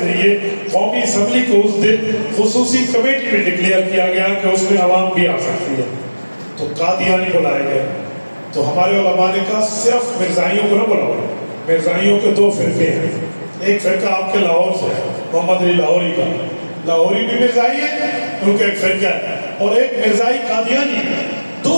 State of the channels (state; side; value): inverted; both; correlation -1.00